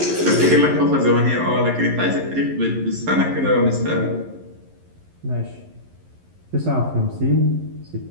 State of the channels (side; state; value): left; late; 11 ms